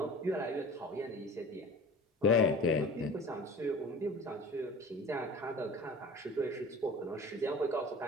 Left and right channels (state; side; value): normal; both; correlation 0.39